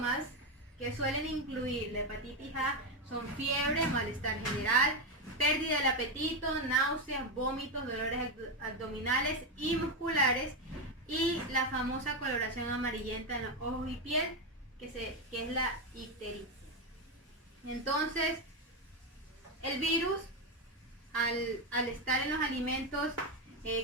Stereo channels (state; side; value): normal; both; correlation 0.09